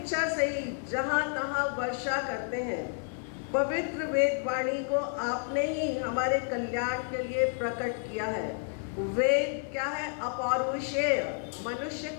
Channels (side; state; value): right; silent; 57 dB below the other